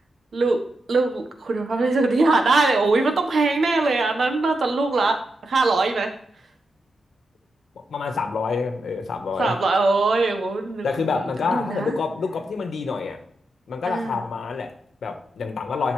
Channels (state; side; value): normal; both; correlation 0.85